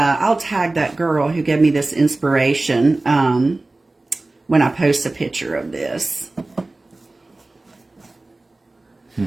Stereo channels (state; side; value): quieter; left; 3.0 dB